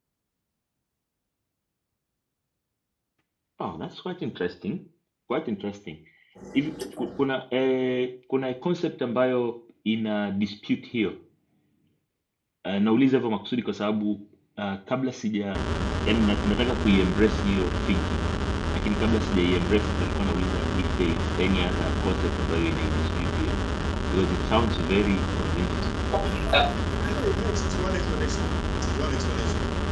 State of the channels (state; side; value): identical; both; correlation 1.00